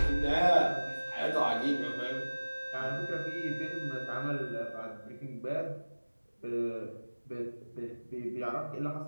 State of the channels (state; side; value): inverted; both; correlation -1.00